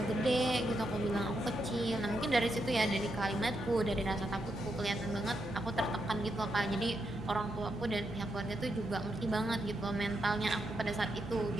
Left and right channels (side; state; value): both; normal; correlation 0.82